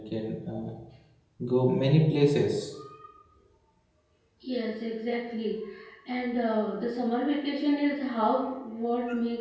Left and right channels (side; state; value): both; identical; correlation 1.00